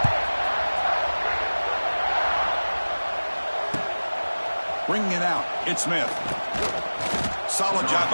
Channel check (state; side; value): inverted; both; correlation -1.00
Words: Bringing it out, it's Smith. Solid job